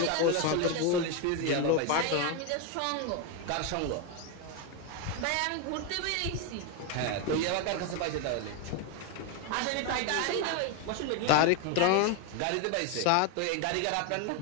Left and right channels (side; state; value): both; different; correlation 0.02